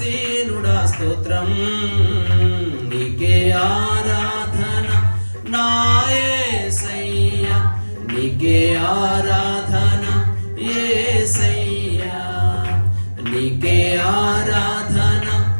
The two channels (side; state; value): both; inverted; correlation -1.00